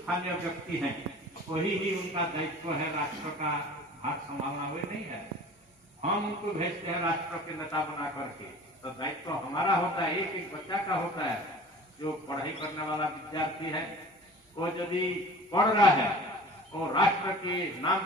व्यक्ति हैं वही ही उनका दायित्व है राष्ट्र का भाग संभालना, हुए नहीं है। हम उनको भेजते हैं राष्ट्र के नेता बना करके, तो दायित्व हमारा होता है, एक एक बच्चा का होता है। जो पढ़ाई करने वाला विद्यार्थी है वो यदि पढ़ रहा है वो राष्ट्र के नाम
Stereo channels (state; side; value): normal; both; correlation 0.42